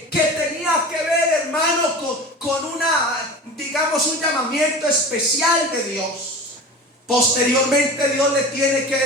tenía que ver, hermano, con un llamamiento especial de Dios. Posteriormente Dios le tiene que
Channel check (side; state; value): both; normal; correlation 0.34